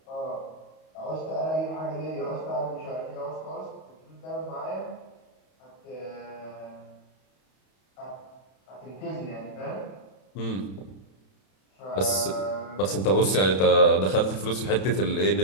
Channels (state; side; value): late; right; 31 ms